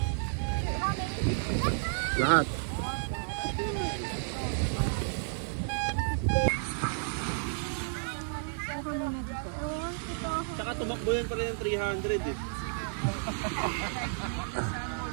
Lahat. Tsaka tumakbo yan pala yung 300 eh.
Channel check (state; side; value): silent; left; 57 dB below the other